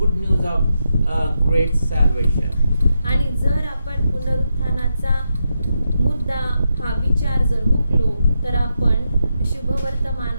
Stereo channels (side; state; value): both; inverted; correlation -0.85